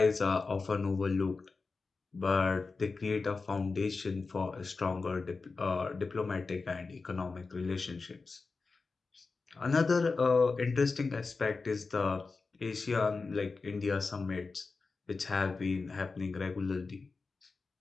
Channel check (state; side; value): quieter; right; 4.2 dB